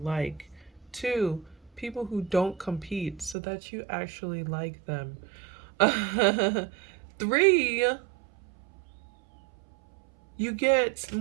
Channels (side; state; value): left; drops out; at 3.4 s